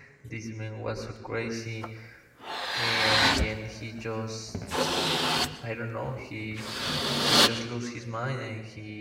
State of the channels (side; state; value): both; identical; correlation 1.00